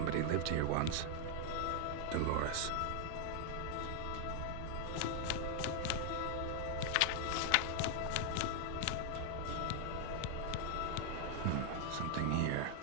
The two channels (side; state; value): both; different; correlation 0.00